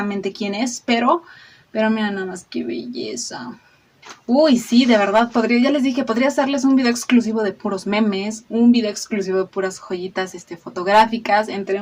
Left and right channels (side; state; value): both; identical; correlation 1.00